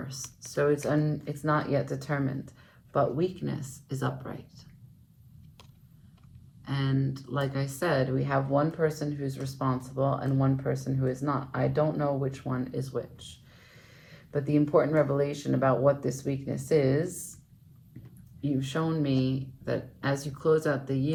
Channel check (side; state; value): both; identical; correlation 1.00